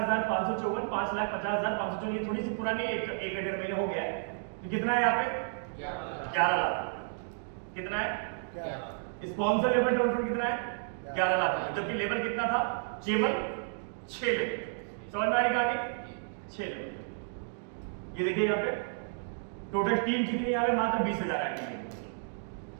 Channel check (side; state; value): left; silent; digital silence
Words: 5,50,554। ये थोड़ी सी पुरानी, एक 1.5 महीने हो गया है। तो कितना है यहाँ पे, 11 लाख। कितना है स्पॉन्सर लेवल ट्रेवल फंड, कितना है 11 लाख, जबकि लेवल कितना था, केवल 6 लेवल। समझ में आएगा आगे, 6 लेवल। ये देखिए यहाँ पे टोटल टीम कितनी यहाँ पे, मात्र 20,000 आईडी है।